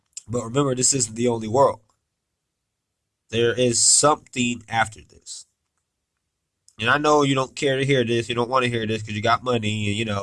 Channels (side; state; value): both; identical; correlation 1.00